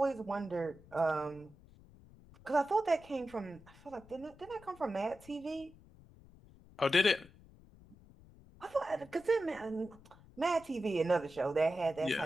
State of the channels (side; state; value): left; noise; rumble, 23 dB below the sound